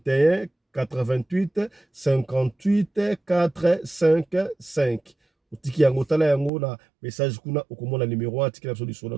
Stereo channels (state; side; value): drops out; left; at 6.5 s